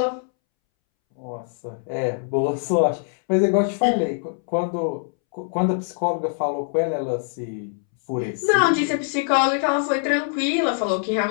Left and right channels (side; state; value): right; silent; 63 dB below the other